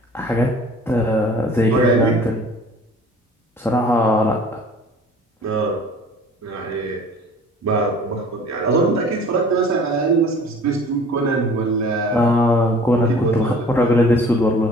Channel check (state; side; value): normal; both; correlation 0.47